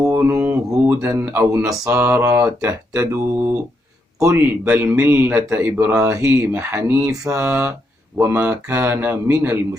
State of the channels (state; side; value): normal; both; correlation 0.80